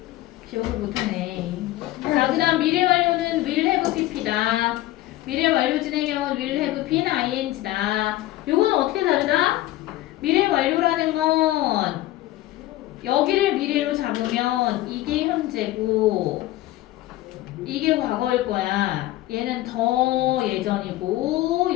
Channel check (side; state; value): right; quieter; 16.0 dB